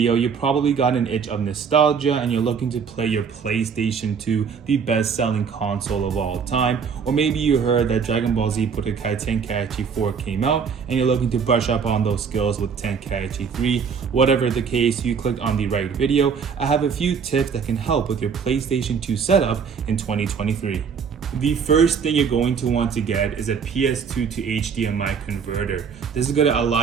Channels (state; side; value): quieter; left; 6.3 dB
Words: you probably got an itch of nostalgia and you're looking to play your PlayStation 2, the best-selling console of all time. Or maybe you heard that Dragon Ball Z Budokai Tenkaichi 4 came out and you're looking to brush up on those skills with Tenkaichi 3. Whatever the case, you clicked on the right video. I have a few tips that can help with your PlayStation 2 setup in 2023. The first thing you're going to want to get is a PS2 to HDMI converter. This is going to